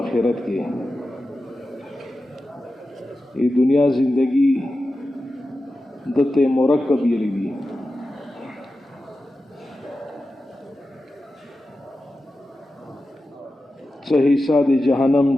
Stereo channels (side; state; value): both; normal; correlation 0.92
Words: کې. ای دنیا زندگی دته مرکب یلی دی. څه حصہ د جهنم،